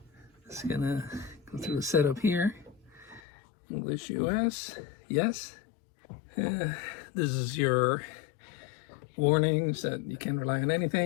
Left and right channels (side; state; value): right; drops out; at 3.2 s